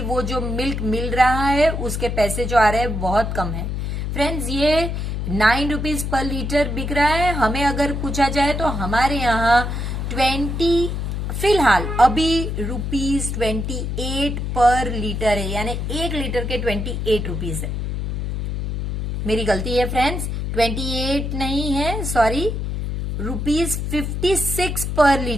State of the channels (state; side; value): noise; left; hum, 3 dB below the sound